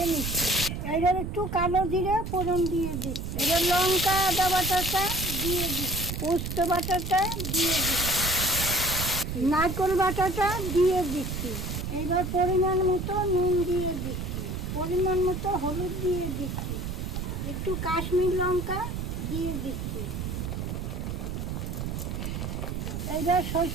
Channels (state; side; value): noise; right; rumble, 4 dB below the sound